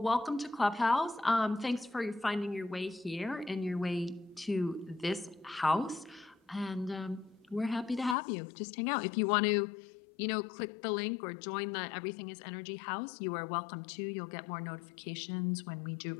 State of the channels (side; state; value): right; drops out; at 8.2 s